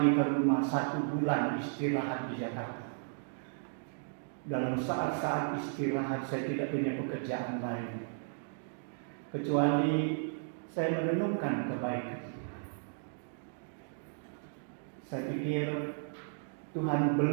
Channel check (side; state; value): left; silent; digital silence